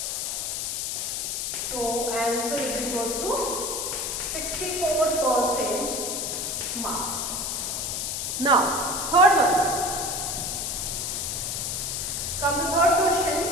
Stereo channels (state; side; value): noise; left; hiss, 2 dB below the sound